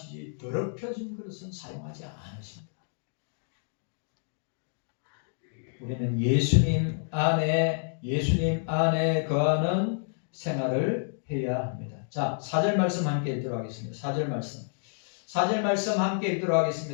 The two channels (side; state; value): right; silent; digital silence